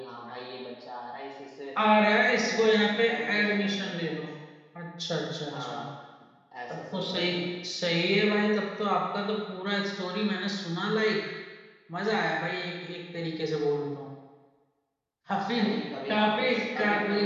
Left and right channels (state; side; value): identical; both; correlation 1.00